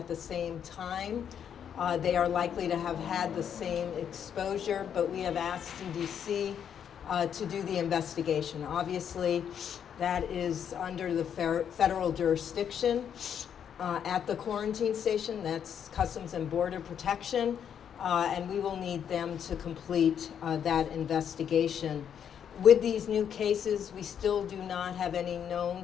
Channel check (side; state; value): right; quieter; 8.5 dB